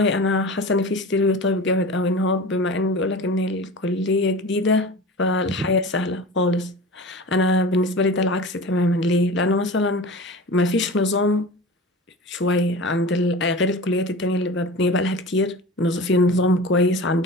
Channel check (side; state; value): both; normal; correlation 0.34